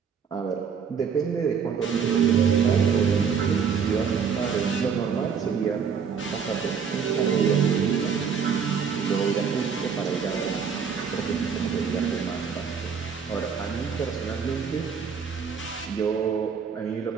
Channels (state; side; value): quieter; left; 6.6 dB